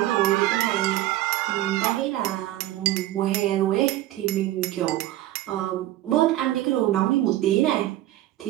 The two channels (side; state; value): left; quieter; 14.9 dB